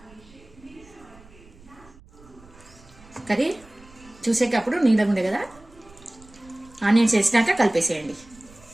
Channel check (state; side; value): noise; right; rumble, 24 dB below the sound